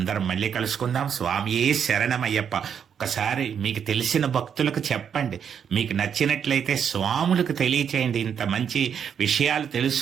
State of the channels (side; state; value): left; quieter; 7.9 dB